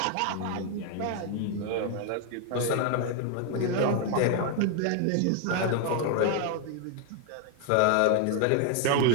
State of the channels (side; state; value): both; different; correlation 0.00